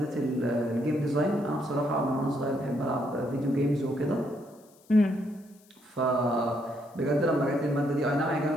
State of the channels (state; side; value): noise; left; hiss, 30 dB below the sound